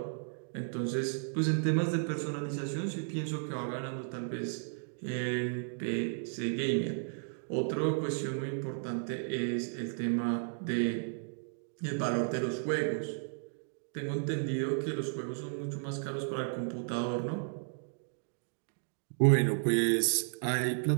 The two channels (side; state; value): left; silent; digital silence